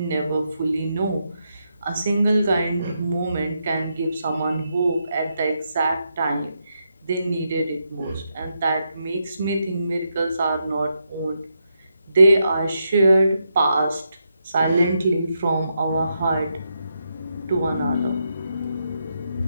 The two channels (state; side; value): inverted; both; correlation -0.82